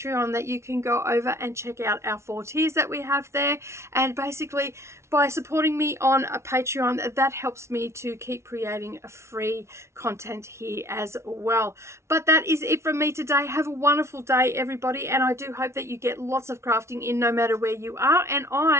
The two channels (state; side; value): late; left; 0.13 ms